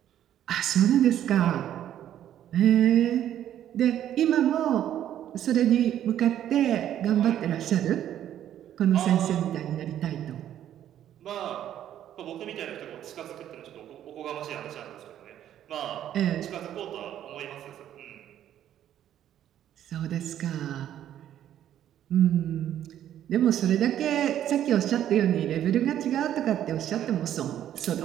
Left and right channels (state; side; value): quieter; left; 11.1 dB